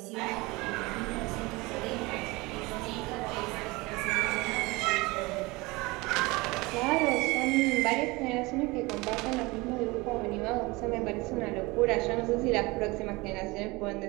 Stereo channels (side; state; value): left; quieter; 23.4 dB